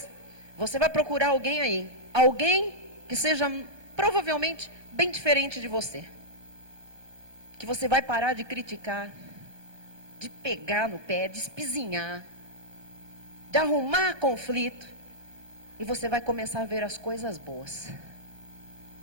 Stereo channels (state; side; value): late; left; 1.2 ms